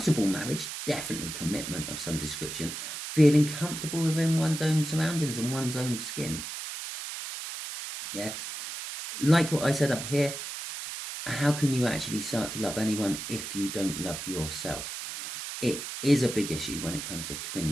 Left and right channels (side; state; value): right; noise; hiss, 7 dB below the sound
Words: marriage, definitely commitment of some description, feeling comfortable within one's own surroundings and one's own skin. Yeah, like what I said up here, how can you actually start to love anyone if you don't love yourself? It is a big issue when it comes to